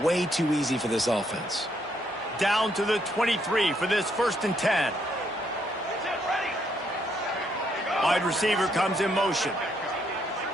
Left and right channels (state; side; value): normal; both; correlation 0.73